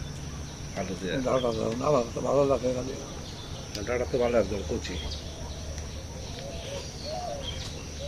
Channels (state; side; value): identical; both; correlation 1.00